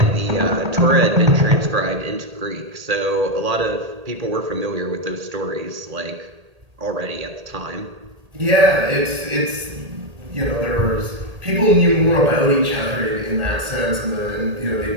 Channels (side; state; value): left; late; 1.8 ms